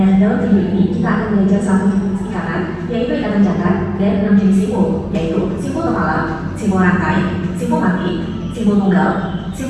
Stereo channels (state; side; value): identical; both; correlation 1.00